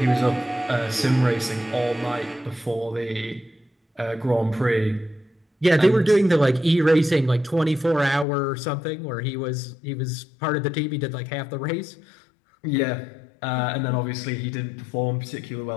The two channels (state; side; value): drops out; right; at 8.2 s